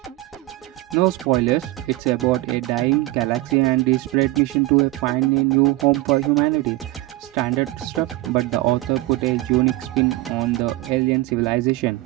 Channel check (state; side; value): quieter; left; 18.3 dB